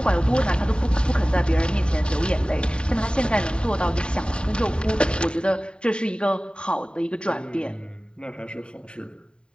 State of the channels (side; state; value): right; late; 0.050 ms